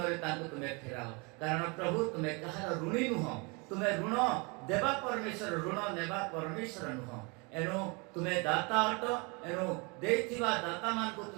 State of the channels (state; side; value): quieter; left; 30.0 dB